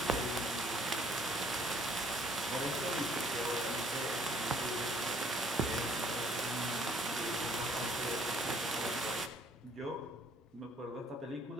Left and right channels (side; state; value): both; normal; correlation 0.60